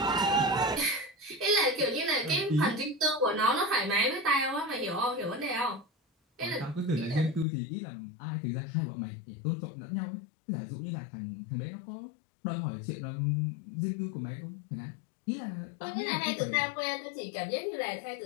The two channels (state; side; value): drops out; right; at 7.5 s